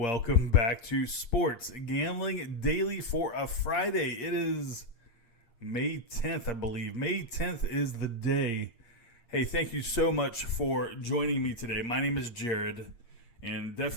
back to Sports Gambling Daily for a Friday. It is May 10th, I believe. May 10th is the day. Hey, thank you so much for joining me today. My name is Jared, and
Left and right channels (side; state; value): right; late; 8.6 ms